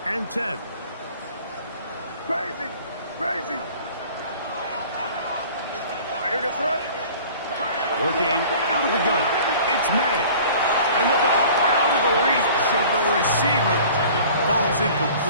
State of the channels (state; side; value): inverted; both; correlation -0.46